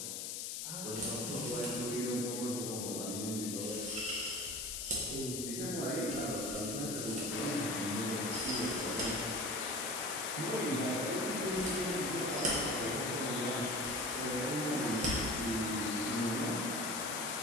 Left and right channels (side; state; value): left; noise; hiss, 3 dB below the sound